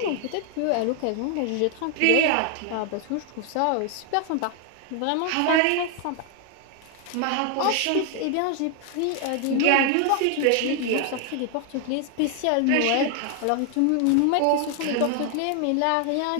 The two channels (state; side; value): different; both; correlation 0.00